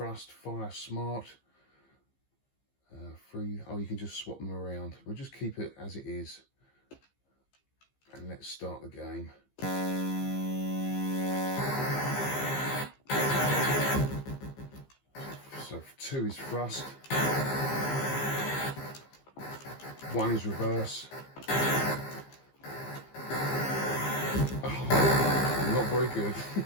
fire, smart. 3, oh, you can just swap them around. We'll just keep it as it is. And let's start the game. So 2 is thrust. 1 is reverse. Oh, not very good.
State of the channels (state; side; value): late; right; 15 ms